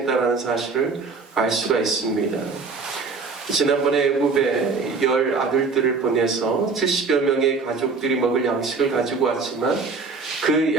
사실을 알 수가 있습니다. 지난번에 애굽에 10 아들들을 보내서 70여 명의 가족들이 먹을 양식을 가지고 왔지만 그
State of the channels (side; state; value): left; quieter; 4.5 dB